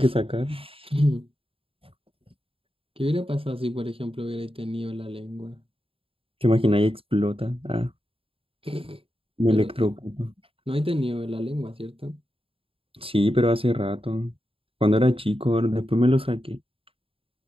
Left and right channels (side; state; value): left; late; 0.27 ms